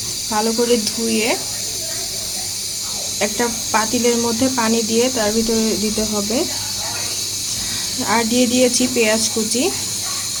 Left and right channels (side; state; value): both; identical; correlation 1.00